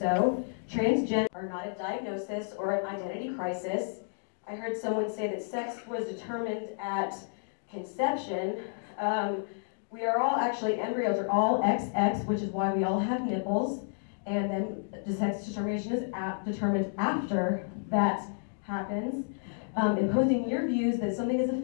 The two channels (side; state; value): right; silent; digital silence